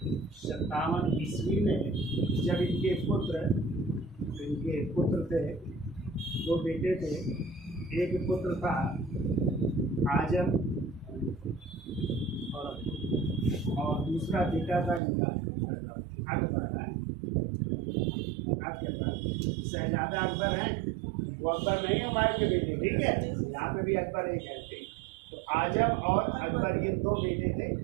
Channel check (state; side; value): drops out; left; at 15.0 s